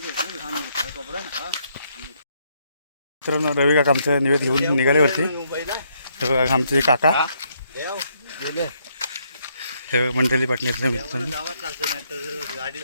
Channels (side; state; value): both; inverted; correlation -0.73